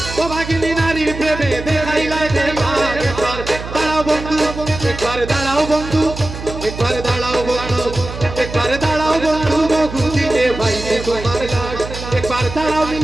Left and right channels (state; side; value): noise; right; hum, 10 dB below the sound